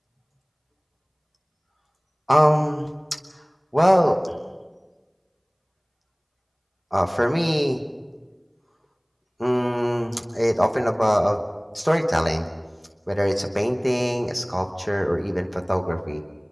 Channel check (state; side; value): identical; both; correlation 1.00